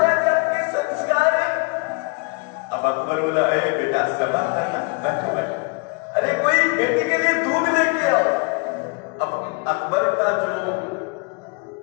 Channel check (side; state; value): right; quieter; 30.4 dB